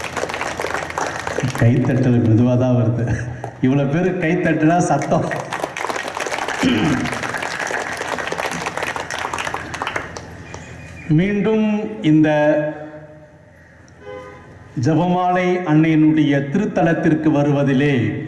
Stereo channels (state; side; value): identical; both; correlation 1.00